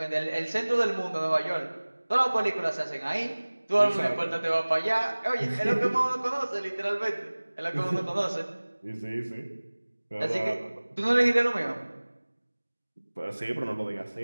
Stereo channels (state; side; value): inverted; both; correlation -1.00